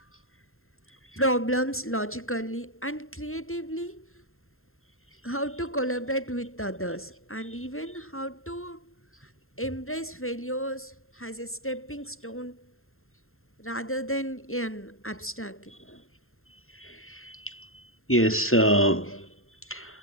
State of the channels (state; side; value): late; right; 0.61 ms